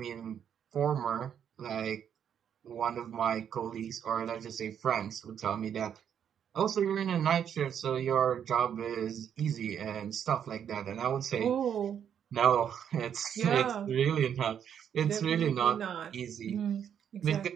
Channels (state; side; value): quieter; left; 8.6 dB